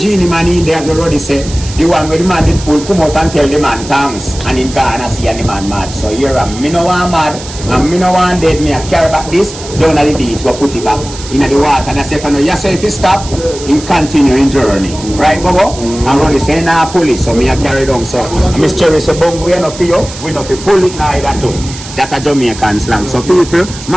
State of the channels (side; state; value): right; noise; hiss, 13 dB below the sound